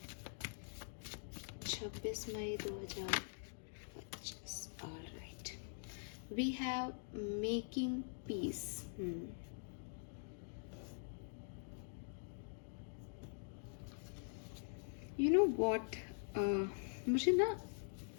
26 मई 2025, all right. We have making peace. You know what, मुझे ना,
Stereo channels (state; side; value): silent; right; digital silence